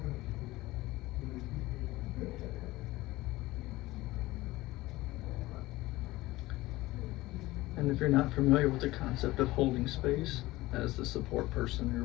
And if you're not familiar with the concept of holding space as the support person, you're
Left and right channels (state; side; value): quieter; right; 18.7 dB